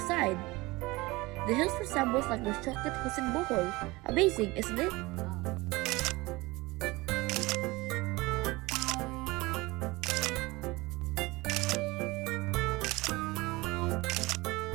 The hills resembles like the chocolate hills in Bohol. Amazing, isn't it?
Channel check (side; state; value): left; quieter; 21.9 dB